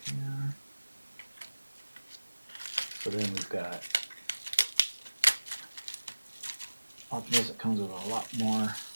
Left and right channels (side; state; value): both; inverted; correlation -1.00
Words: Here. So then we've got Optimus that comes with a lot more